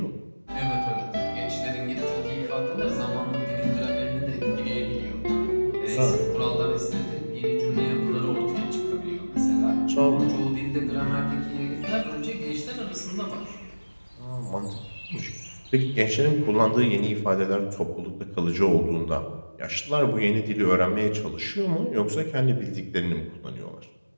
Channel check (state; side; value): inverted; both; correlation -1.00